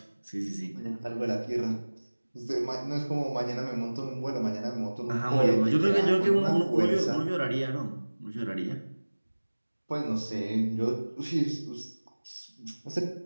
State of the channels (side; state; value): both; inverted; correlation -1.00